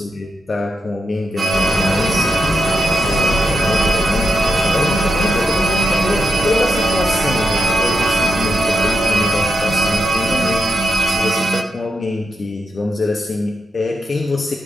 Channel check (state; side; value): normal; both; correlation 0.85